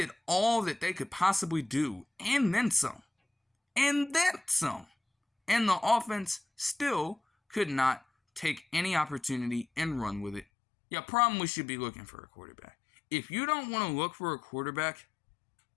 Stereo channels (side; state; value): right; drops out; at 10.5 s